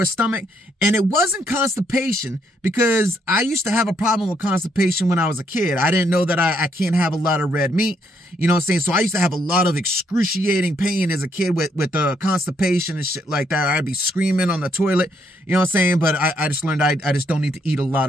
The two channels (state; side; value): normal; both; correlation 0.73